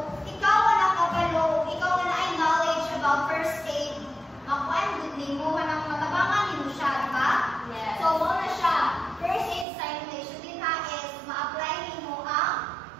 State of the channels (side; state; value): left; drops out; at 9.7 s